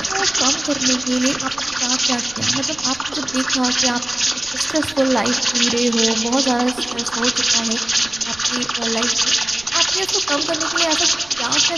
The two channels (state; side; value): noise; right; rumble, 22 dB below the sound